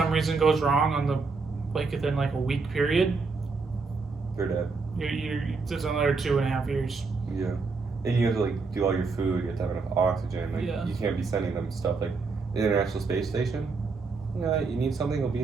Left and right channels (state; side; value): quieter; left; 4.3 dB